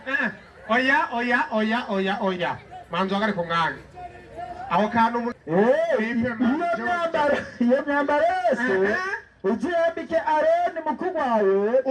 oya manzo agari ku mwanya aho kantu iyo myambaro yose uzuyambike Aroni mukuru wawe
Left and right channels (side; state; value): both; identical; correlation 1.00